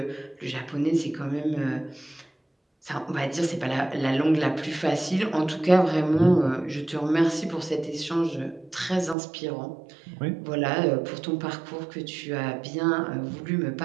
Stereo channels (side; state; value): left; drops out; at 9.2 s